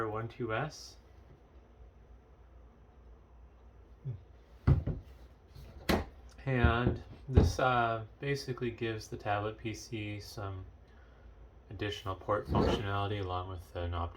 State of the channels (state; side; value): identical; both; correlation 1.00